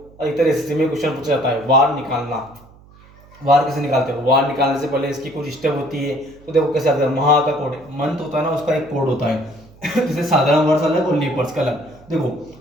अधिकतर एसएससी में क्वेश्चन पूछा जाता है वार निकालना। वार कैसे निकालते हो? वार निकालने से पहले इसकी कुछ स्टेप होती है। तो देखो कैसे आता है। महा का कोड, मंथ होता है ना, उसका एक कोड होता है जैसे साधारण वर्ष अलग और लीप वर्ष का अलग। देखो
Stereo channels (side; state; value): right; noise; hum, 25 dB below the sound